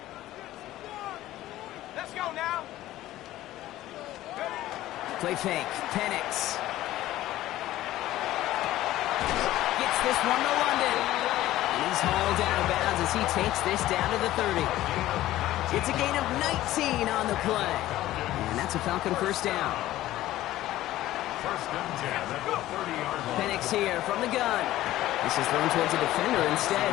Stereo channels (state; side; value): quieter; right; 15.0 dB